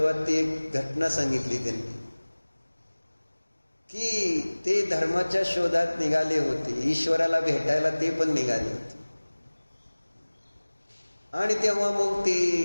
ती एक घटना सांगितली त्यांनी, की ते धर्माच्या शोधात निघाले होते, ईश्वराला भेटायला ते पण निघाले होते. आणि तेव्हा मग ते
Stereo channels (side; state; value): both; inverted; correlation -1.00